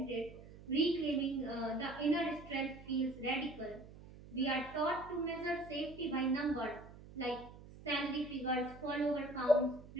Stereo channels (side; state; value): right; noise; hum, 17 dB below the sound